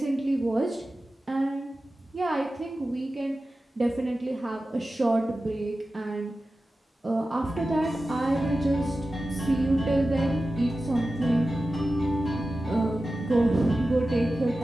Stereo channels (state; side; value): normal; both; correlation 0.94